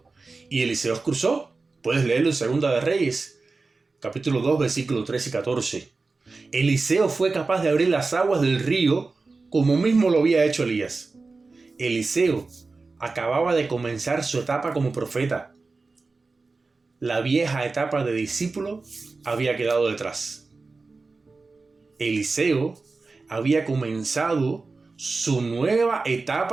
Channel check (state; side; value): quieter; left; 3.9 dB